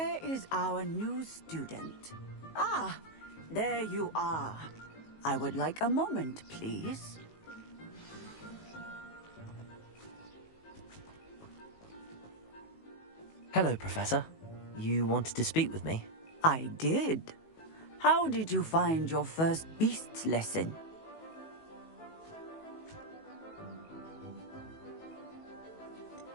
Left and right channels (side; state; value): right; late; 19 ms